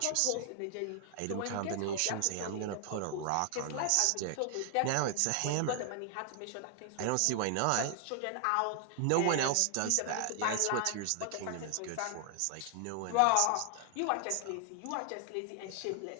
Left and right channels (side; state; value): both; different; correlation 0.00